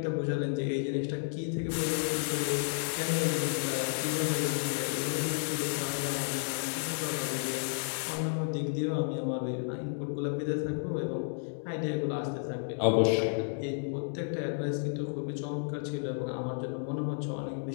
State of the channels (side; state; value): right; silent; digital silence